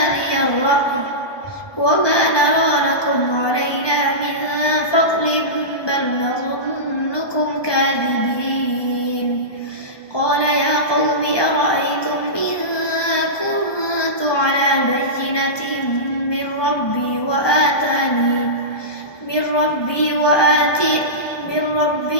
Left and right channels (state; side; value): late; right; 1.2 ms